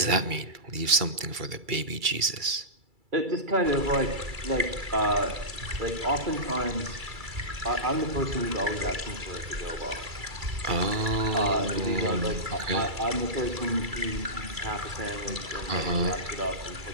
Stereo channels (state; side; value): late; left; 2.3 ms